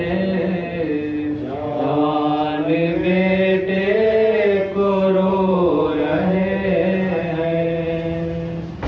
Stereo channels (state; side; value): identical; both; correlation 1.00